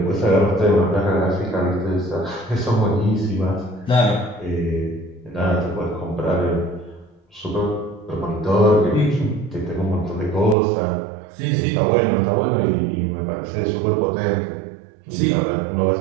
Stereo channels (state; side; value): drops out; left; at 10.6 s